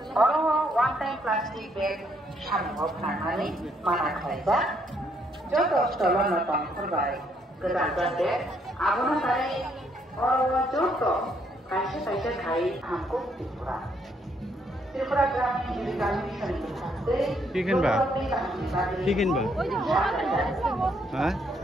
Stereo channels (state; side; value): normal; both; correlation 0.71